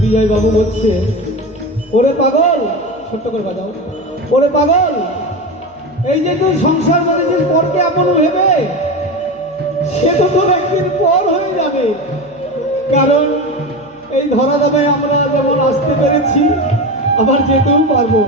বিজয় বাবু বলছে, ওরে পাগল, ছোট্ট করে বাজাও, ওরে পাগল, এই যে তুই সংসার করেছিস পরকে আপন ভেবে, সে তো তোর একদিন পর হয়ে যাবে। কারণ এই ধরা দামে আমরা যেমন আসতে পেরেছি, আবার যেতেও পারবো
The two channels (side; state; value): left; noise; hum, 30 dB below the sound